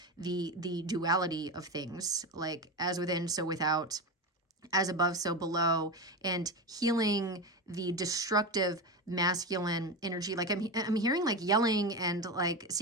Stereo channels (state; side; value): normal; both; correlation 0.19